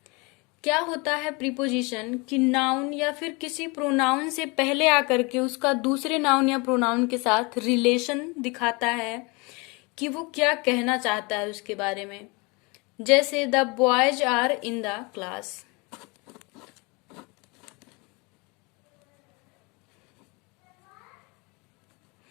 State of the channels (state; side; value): quieter; right; 28.2 dB